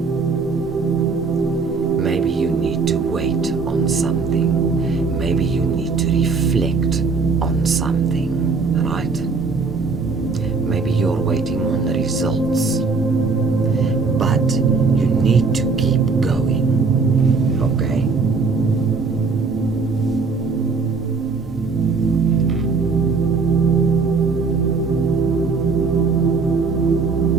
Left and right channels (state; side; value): quieter; left; 4.5 dB